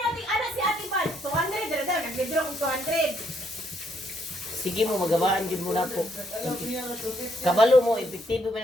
ating ana si Ate Pan. 200 dira daw nag-withdraw kong 200. Sige mo magabaan gyud mo nako. Kabalo mo epektibo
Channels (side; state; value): both; normal; correlation 0.72